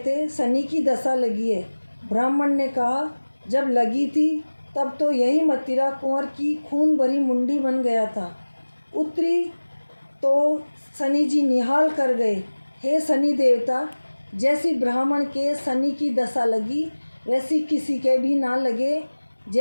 शनि की दशा लगी है। ब्राह्मण ने कहा, जब लगी थी तब तो यही मदिरा कुंवर की खून भरी मुंडी बन गया था। उतरी तो शनि जी निहाल कर गए। हे शनि देवता, जैसी ब्राह्मण के शनि की दशा लगी वैसी किसी के भी ना लगे।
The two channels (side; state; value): both; inverted; correlation -1.00